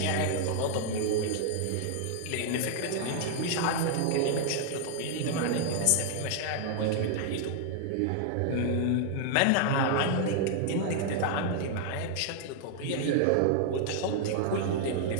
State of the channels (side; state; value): both; different; correlation 0.00